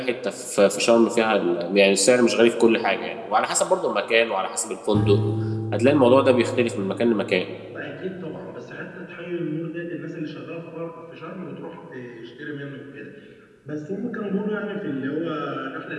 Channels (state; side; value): identical; both; correlation 1.00